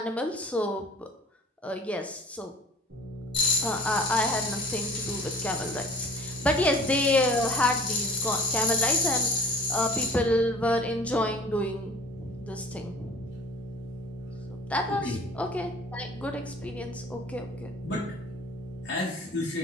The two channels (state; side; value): normal; both; correlation 0.45